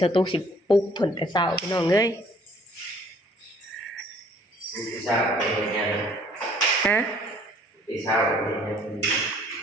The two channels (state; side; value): normal; both; correlation 0.58